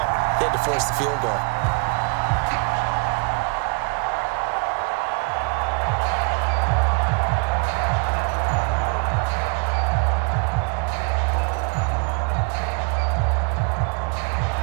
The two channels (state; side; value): quieter; left; 34.9 dB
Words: They had to force the field goal.